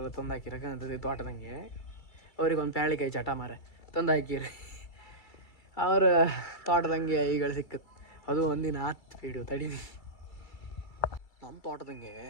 ತಂದು ಹಾಕಿರಕ್ಕಂತದ್ದು ತೋಟದಂಗೆ. ಅವ್ರಿಗೊಂದು ಪ್ಯಾಳಿಕಾಯಿ ಚಟ ಮರ ತಂದು ಹಾಕಿರಿ ಅವ್ರ ತೋಟದಂಗೆ ಈಗಳು ಸಿಕ್ಕತ್ತು. ಅದು ಒಂದಿನ ಹತ್ತು ಪೀಡು ತಡೀನಿ. ನಮ್ಮ ತೋಟದಂಗೆ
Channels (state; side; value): late; right; 2.3 ms